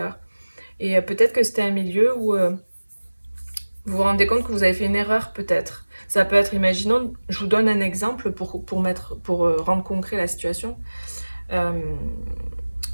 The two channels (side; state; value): both; inverted; correlation -1.00